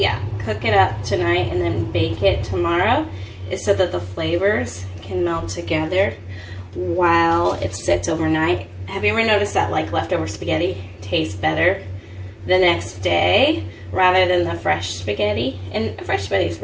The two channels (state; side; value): identical; both; correlation 1.00